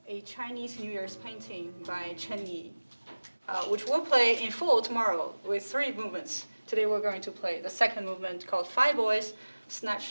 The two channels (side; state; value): both; inverted; correlation -1.00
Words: a Chinese New Year's painting by Chen Yi. Which we'll play in full tomorrow with 3 movements. Today we're going to play the second movement called Five Boys